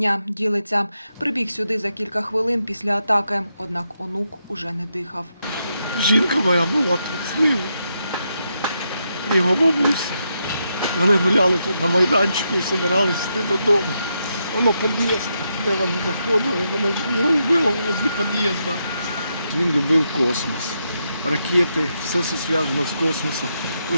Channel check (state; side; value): inverted; both; correlation -0.82